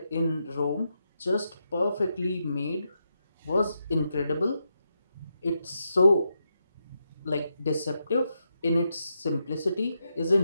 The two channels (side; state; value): both; inverted; correlation -0.84